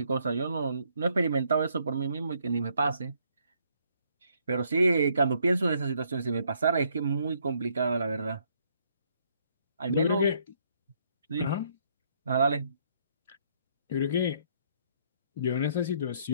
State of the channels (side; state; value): both; inverted; correlation -0.69